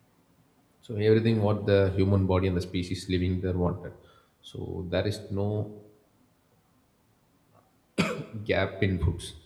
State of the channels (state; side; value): identical; both; correlation 1.00